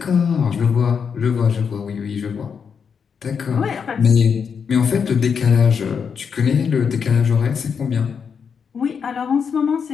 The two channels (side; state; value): right; quieter; 6.5 dB